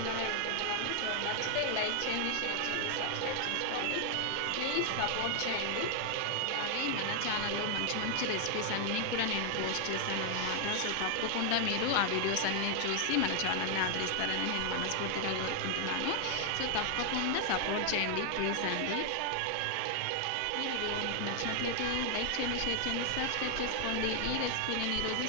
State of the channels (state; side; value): different; both; correlation 0.00